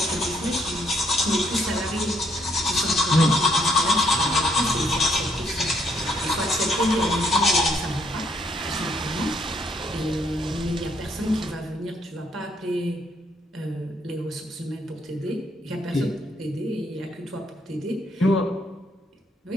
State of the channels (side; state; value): both; normal; correlation 0.70